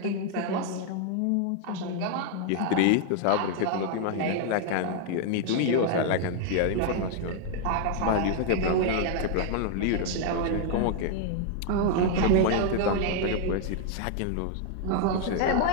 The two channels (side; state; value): both; different; correlation 0.00